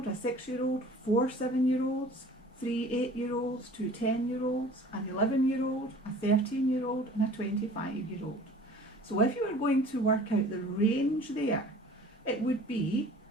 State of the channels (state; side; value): normal; both; correlation 0.47